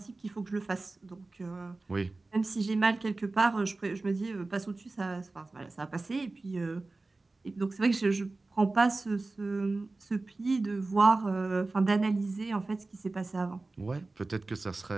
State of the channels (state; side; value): quieter; left; 3.3 dB